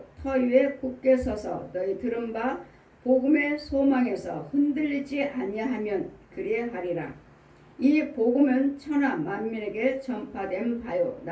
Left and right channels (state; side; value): identical; both; correlation 1.00